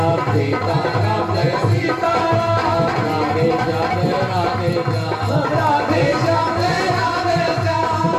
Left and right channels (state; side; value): identical; both; correlation 1.00